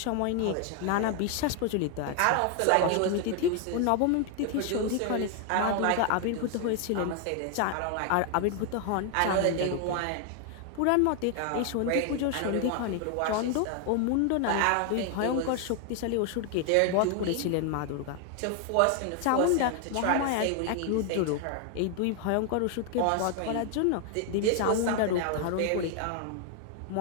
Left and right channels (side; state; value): both; different; correlation 0.00